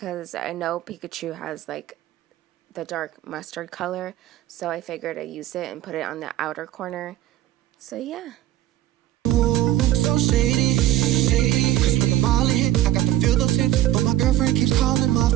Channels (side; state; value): left; quieter; 14.1 dB